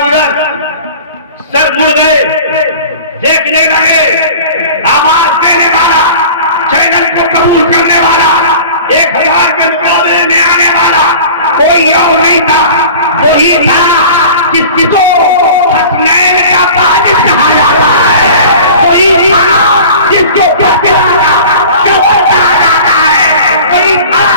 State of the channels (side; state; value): both; inverted; correlation -0.41